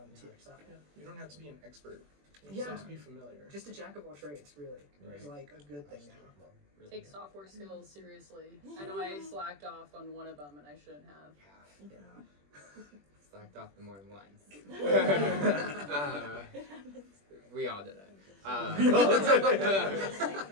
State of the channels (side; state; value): left; late; 21 ms